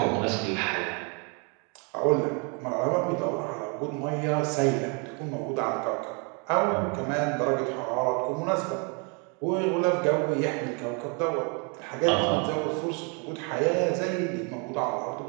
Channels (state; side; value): quieter; left; 34.8 dB